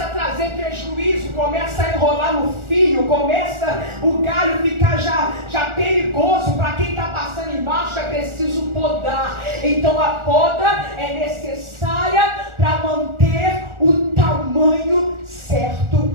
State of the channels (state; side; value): late; left; 1.4 ms